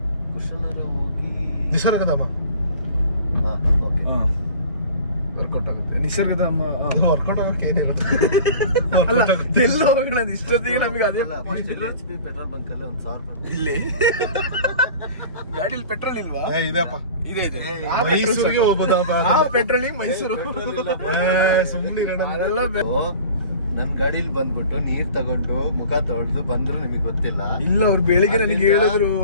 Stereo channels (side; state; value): both; inverted; correlation -0.42